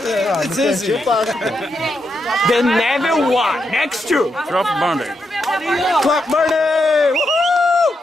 It's easy. The never one. Next to. Fluff Burner. Fluff Burner.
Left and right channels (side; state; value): both; normal; correlation 0.83